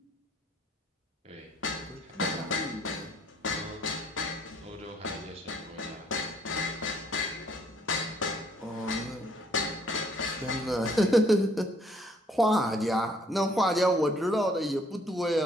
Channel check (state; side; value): normal; both; correlation 0.64